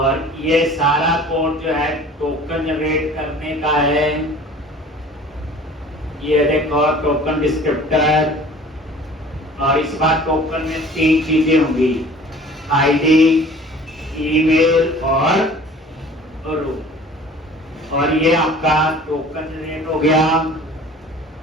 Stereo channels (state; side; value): normal; both; correlation 0.47